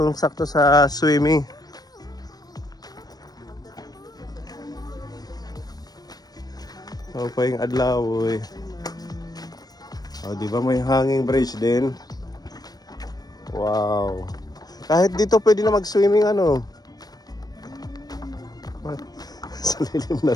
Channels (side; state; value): right; late; 0.19 ms